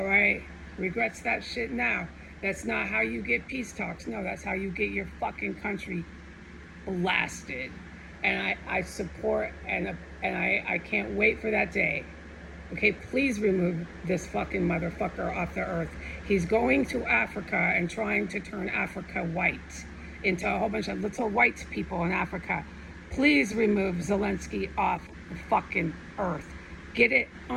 right? Regrets that shit now. That's not how you get peace talks. No, that's how you get your fucking country blasted. And I support and I can't wait for that day. Okay, please remove this fucking motherfucker off the earth. He's going to Africa and trying to turn Africa white into a whole bunch of little white people in Africa. Please remove Zelensky off the fucking earth. Get it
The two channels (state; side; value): identical; both; correlation 1.00